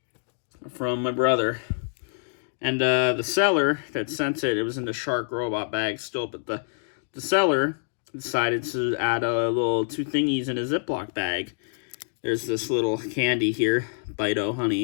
From my brother. And the seller that sent it, it was in the shark robot bag still, but the seller decided to add a little 2 thingies in a Ziploc bag. There's this little candy here, Bite-O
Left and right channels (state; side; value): silent; right; digital silence